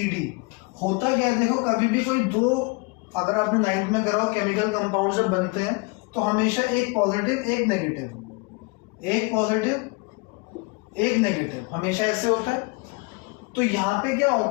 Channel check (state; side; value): quieter; right; 27.7 dB